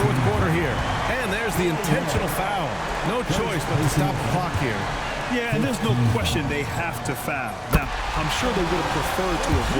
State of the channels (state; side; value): identical; both; correlation 1.00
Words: fourth quarter here. And there's the intentional foul. No choice but to stop the clock here. Yeah, and there's no question they have to foul. Now, I'm sure they would have preferred to